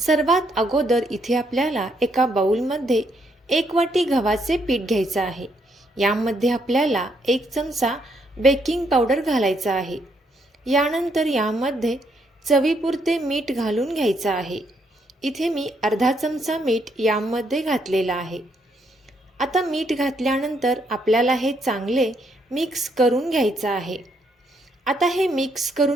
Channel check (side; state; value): both; normal; correlation 0.74